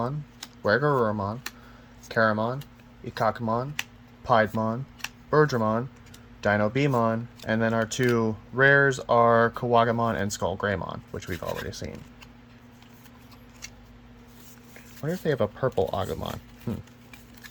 Wergarurumon, Karamon, Ikakumon, Piedmon, Birdramon, Dino-Beamon, and then our two rares are Kawagamon and Skullgreymon, which we've already seen. I wonder if they have a purple Agumon.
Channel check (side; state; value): both; identical; correlation 1.00